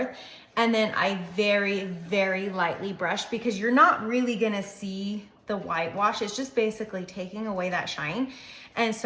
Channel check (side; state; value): both; identical; correlation 1.00